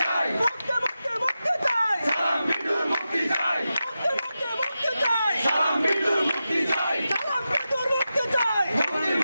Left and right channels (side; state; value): both; inverted; correlation -0.91